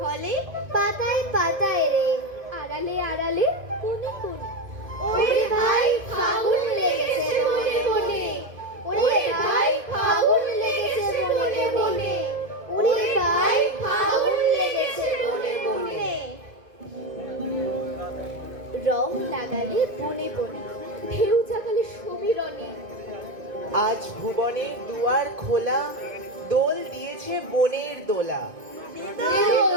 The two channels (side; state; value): left; late; 1.7 ms